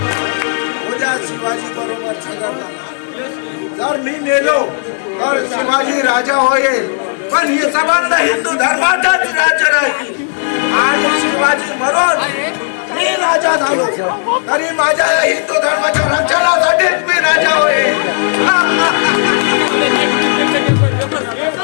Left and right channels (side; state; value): right; silent; digital silence